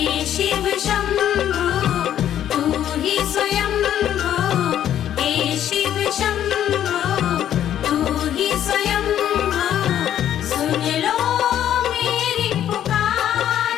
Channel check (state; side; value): quieter; right; 10.8 dB